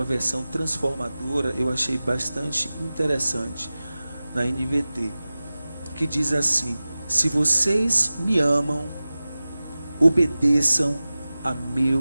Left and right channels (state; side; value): inverted; both; correlation -0.97